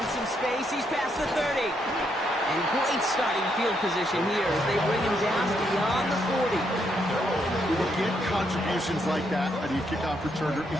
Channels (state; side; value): normal; both; correlation 0.76